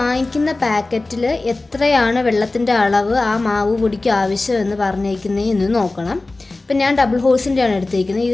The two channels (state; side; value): quieter; right; 3.2 dB